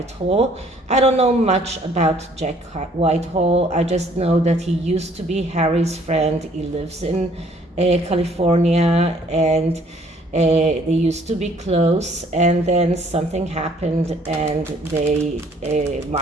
I don't know much about Jack Whitehall. I just know that he used to be Harry's friend. He lives in California, and they used to be close, and then something happened and they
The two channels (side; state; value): both; normal; correlation 0.61